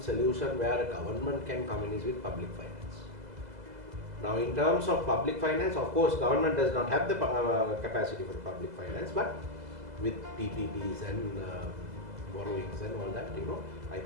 solution where a government can come in is with public finance. Now, in terms of public finance, of course, government does not have the capacity for public finance, but with PPPs and borrowings and all that, I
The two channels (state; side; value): late; left; 2.0 ms